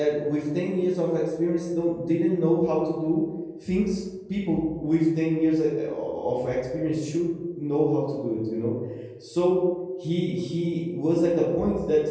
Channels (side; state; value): both; identical; correlation 1.00